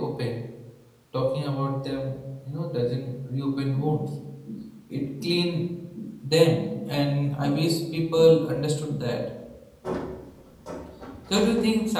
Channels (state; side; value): identical; both; correlation 1.00